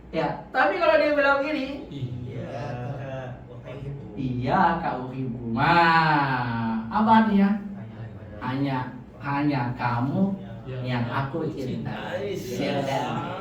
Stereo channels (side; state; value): both; identical; correlation 1.00